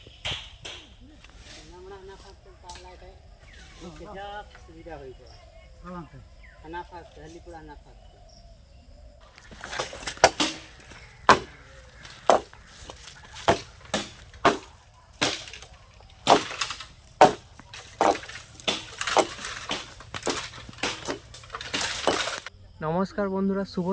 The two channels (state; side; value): identical; both; correlation 1.00